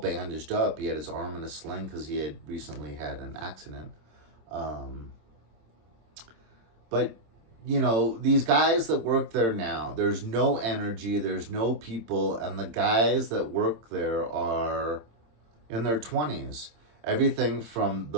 up. He had his arm in a sling because he had recently had an accident. But, these guys that work there now, there's no energy, there's no people, and the guys that work there are in their 20s. Everything from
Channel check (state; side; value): late; left; 26 ms